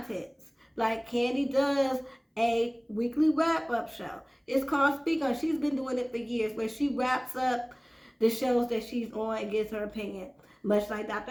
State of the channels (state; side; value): identical; both; correlation 1.00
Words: Like, Candy does a weekly wrap-up show. It's called Speak On. She's been doing it for years, where she wraps up the shows that she's on and gives her opinion. Much like